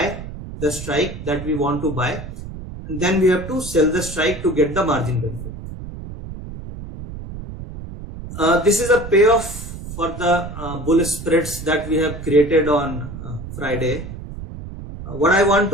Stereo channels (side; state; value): right; noise; rumble, 10 dB below the sound